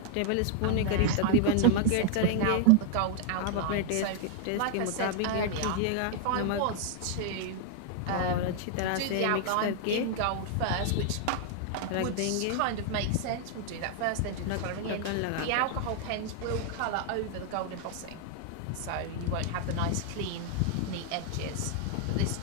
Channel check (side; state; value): both; different; correlation 0.00